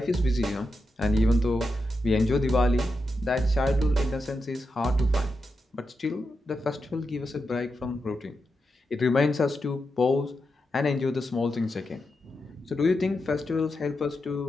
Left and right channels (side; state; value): both; normal; correlation 0.87